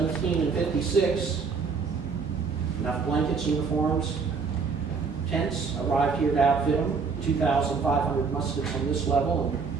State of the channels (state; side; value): quieter; left; 5.1 dB